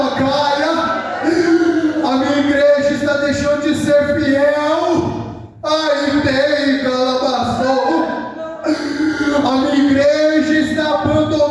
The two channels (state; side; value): identical; both; correlation 1.00